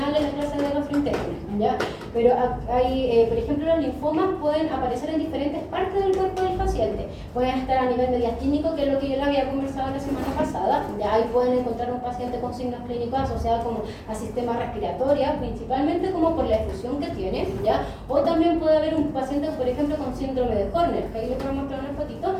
en la clase de gastrointestinal, ¿ya? Pero hay, por ejemplo, los linfomas pueden aparecer en diferentes partes del cuerpo del paciente. Pueden estar a nivel mediastínico, que es lo que yo les había conversado la semana pasada, ya ahí pueden encontrar un paciente con signos clínicos asociados como a sistema respiratorio, principalmente como por la efusión que tiene, ¿ya? O también puede haber un paciente, por ejemplo, con síndrome de Horner, que ahí les voy a mostrar una fotito,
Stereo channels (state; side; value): identical; both; correlation 1.00